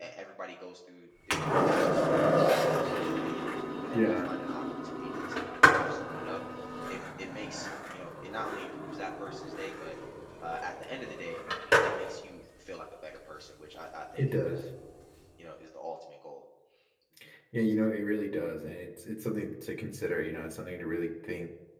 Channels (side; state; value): both; identical; correlation 1.00